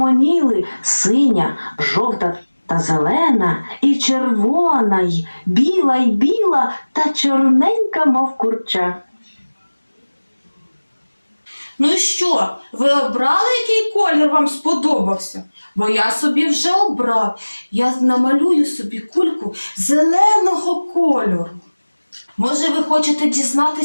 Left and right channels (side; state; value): both; inverted; correlation -1.00